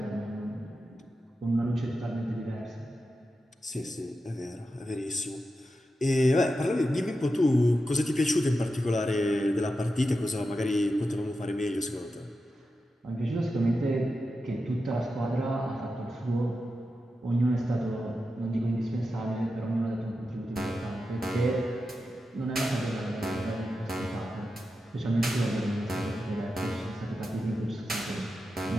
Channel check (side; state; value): both; normal; correlation 0.90